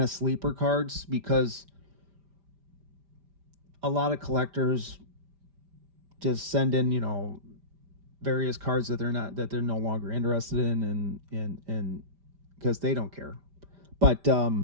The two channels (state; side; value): late; left; 5.1 ms